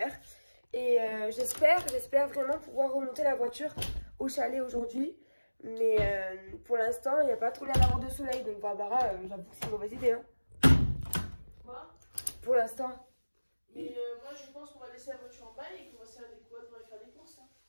Et j'espère vraiment pouvoir remonter la voiture au chalet aujourd'hui. Mais pour l'instant, il n'y a pas trop l'air d'avoir de soleil. Donc Barbara, j'avoue que c'est une mauvaise idée. Hein. Quoi? Pour l'instant. Et moi, je pense qu'on va laisser la voiture en bas et qu'on va se faire des quads pour aller faire des courses. Hein.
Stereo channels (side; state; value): both; inverted; correlation -1.00